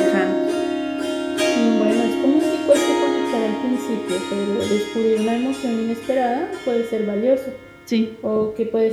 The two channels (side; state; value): both; identical; correlation 1.00